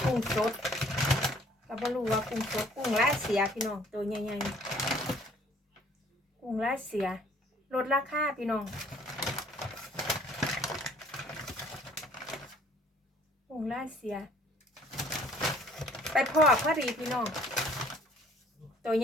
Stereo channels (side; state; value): both; normal; correlation 0.57